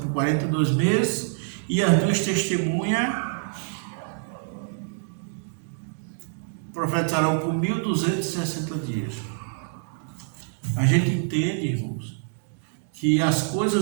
42 meses e as duas testemunhas profetizarão por 1.260 dias? A gente entende, irmãos, que as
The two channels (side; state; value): left; silent; digital silence